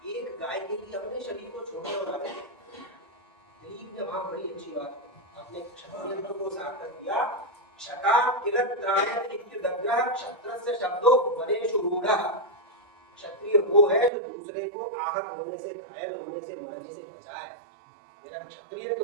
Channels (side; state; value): left; drops out; at 14.1 s